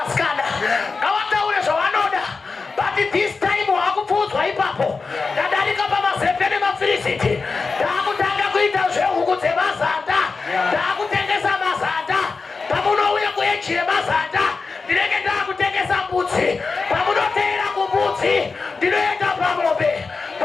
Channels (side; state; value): right; quieter; 4.4 dB